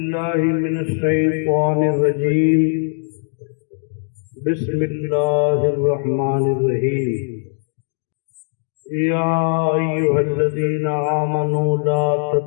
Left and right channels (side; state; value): right; silent; digital silence